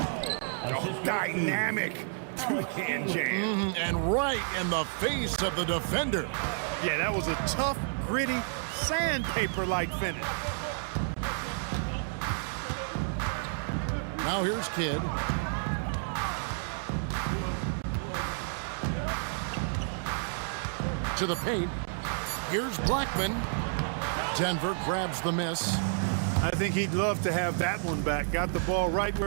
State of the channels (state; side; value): silent; left; digital silence